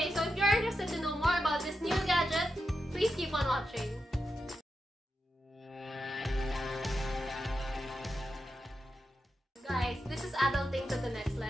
so if you're interested to know more about this new gadget, please keep on watching. Guys, this is adulting to the next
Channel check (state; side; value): normal; both; correlation 0.88